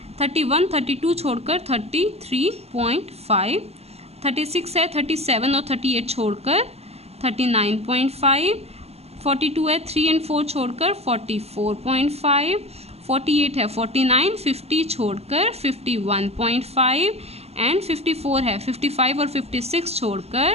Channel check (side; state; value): left; late; 0.30 ms